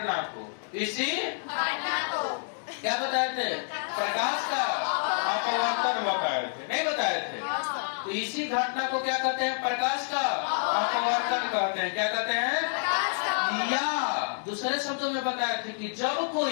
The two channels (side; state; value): right; silent; digital silence